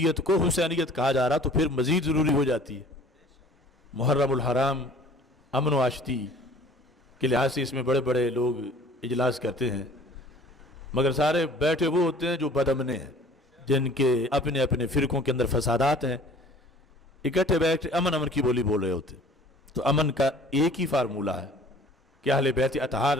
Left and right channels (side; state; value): both; normal; correlation 0.50